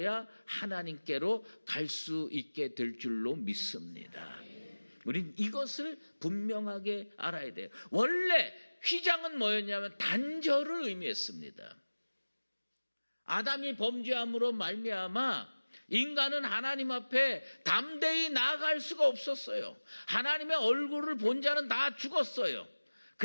하나님께로 갈 수 있게 될 줄로 믿습니다. 우린 이것을 분명하게 알아야 돼요. 원래 휘장은 뭐였냐면 단절을 의미했습니다. 아담이 범죄함으로 말미암아 인간은 하나님 앞에 담대히 나아갈 수가 없었어요. 하나님의 얼굴을 본 자는 다 죽었어요.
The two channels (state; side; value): inverted; both; correlation -1.00